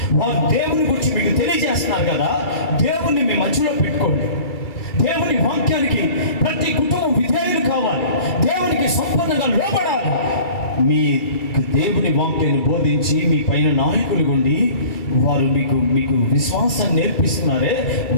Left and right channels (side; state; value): right; late; 2.3 ms